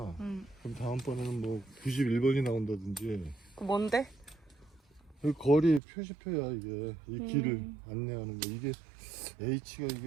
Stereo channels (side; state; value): left; drops out; at 5.8 s